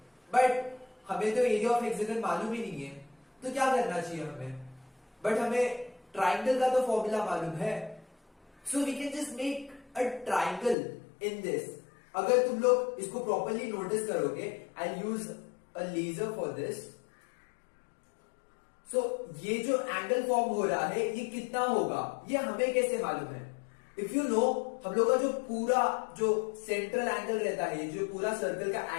बट हमें तो एरिया ऑफ हेक्सागन मालूम ही नहीं है, तो क्या करना चाहिए हमें. बट हमें ट्राइंगल का तो फॉर्मूला मालूम है, so we can just make a triangle in this. अगर तुम लोग इसको प्रॉपरली नोटिस करोगे, I use a laser for this. So ये जो एंगल फॉर्म हो रहा है ये कितना होगा, ये हमें कैसे मालूम है. इफ यू नो, हम लोग का जो पूरा जो सेंट्रल एंगल रहता है, जो पूरा सर्कल का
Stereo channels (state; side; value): drops out; right; at 10.8 s